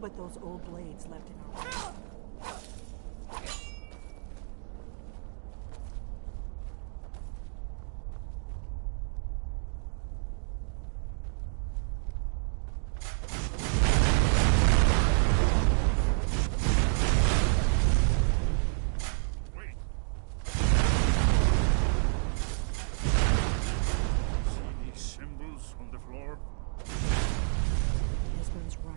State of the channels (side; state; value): left; silent; 58 dB below the other